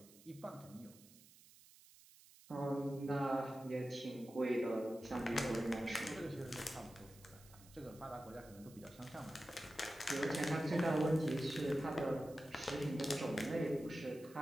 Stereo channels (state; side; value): noise; right; hiss, 22 dB below the sound